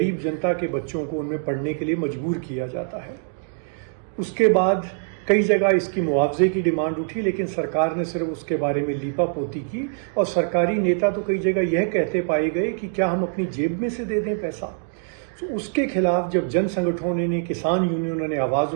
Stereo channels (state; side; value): silent; left; digital silence